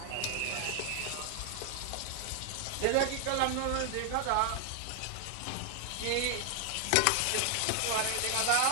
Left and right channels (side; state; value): both; different; correlation 0.00